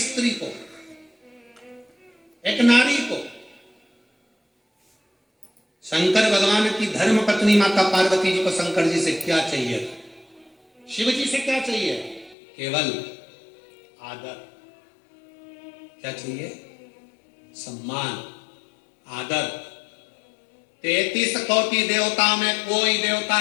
स्त्री को, एक नारी को? शंकर भगवान की धर्म पत्नी माता पार्वती जी को शंकर जी से क्या चाहिए? शिव जी से क्या चाहिए? केवल आदर। क्या चाहिए? सम्मान, आदर। 33 कोटि देवता में कोई देवता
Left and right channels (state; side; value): drops out; right; at 12.4 s